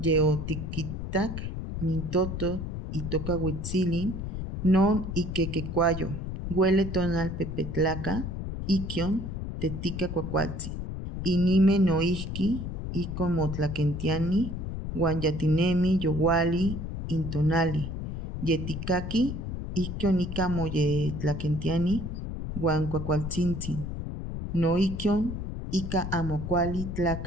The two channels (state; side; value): noise; left; rumble, 5 dB below the sound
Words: mintoto itoca huitzilin, non iquequecuayo, huele tonal pepetlaca, iquion, tetica cuacualtzi. Inime noihki, icon motlaquentiani, guan yatinemi yowali, intonali. Yeticaqui, iquion ica moyetlaquentiani, guan cuacualtzintzin. Noiquion, ica amocuali